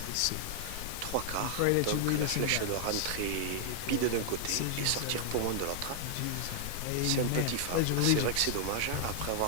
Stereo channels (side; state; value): both; different; correlation 0.00